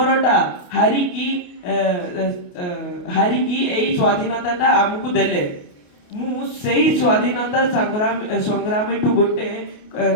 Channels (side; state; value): right; late; 28 ms